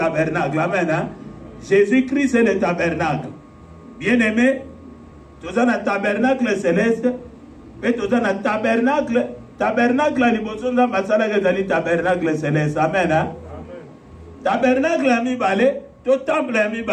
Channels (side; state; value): both; identical; correlation 1.00